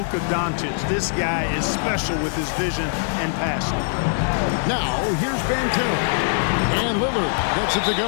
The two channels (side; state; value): right; silent; 64 dB below the other